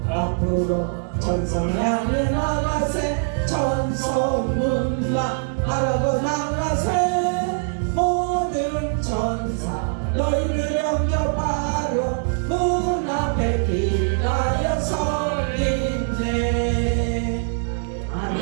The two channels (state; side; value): silent; left; digital silence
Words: 전성 향해 나가세. 전성문만 바라보 나가세. 모든 천사 너희를 영접하러 문 앞에 기다려 서 있네.